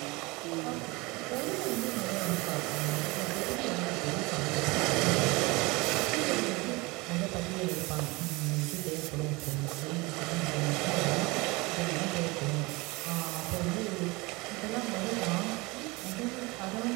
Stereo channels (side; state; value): left; quieter; 24.1 dB